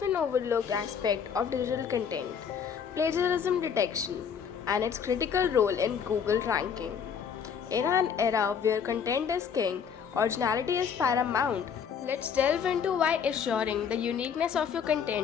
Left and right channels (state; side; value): quieter; right; 7.1 dB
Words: overlooked aspect of digital content plagiarism detection and its critical role in Google ranking. In an era where content is king, originality is paramount. Let's delve into why assuring the uniqueness of your